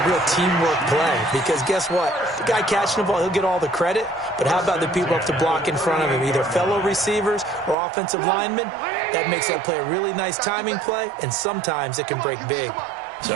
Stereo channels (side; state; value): left; drops out; at 7.8 s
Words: real teamwork play. Because guess what? The guy catching the ball, he'll get all the credit. But how about the people up to block in front of him, either fellow receivers or offensive linemen? That makes that play a really nice timing play, and sometimes it can break big.